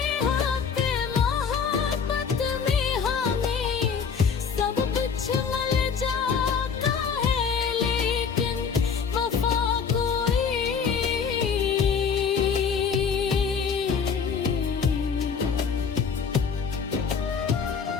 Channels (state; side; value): quieter; right; 6.2 dB